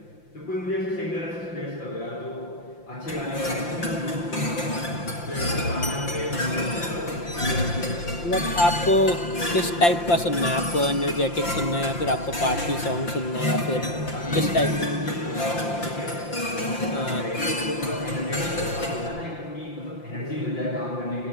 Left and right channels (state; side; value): late; right; 5.8 ms